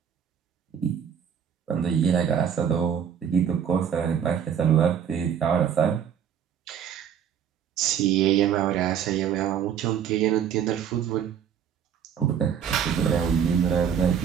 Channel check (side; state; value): left; quieter; 8.4 dB